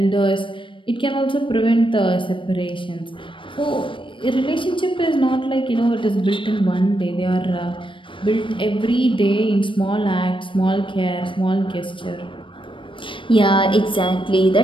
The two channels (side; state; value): right; late; 0.25 ms